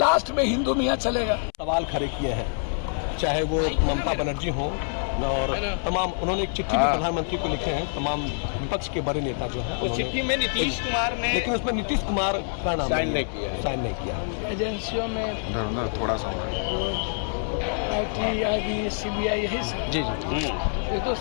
में हिंदू मियाँ चलेगा। सवाल खड़े किए हैं, चाहे वो ममता बनर्जी हो और तमाम, उन्होंने एक चिट्ठी भी प्रधानमंत्री को लिखे हैं, तमाम विपक्ष के बड़े नेता जो है। उस चिट्ठी में नीतीश कुमार ने, लेकिन उसमें नीतीश कुमार का नाम साइन नहीं किया। एजेंसियों में थोड़ा सा आईटी, आईबी, सीबीआई यही सब। जी जी ये तो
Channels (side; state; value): right; silent; 61 dB below the other